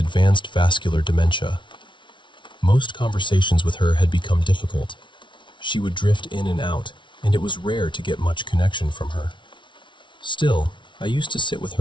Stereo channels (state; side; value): late; right; 0.24 ms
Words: vascular dementia. Most conversations with her had become difficult. She would drift in and out, and it was rare to get much connection from her. Still, I used to sit with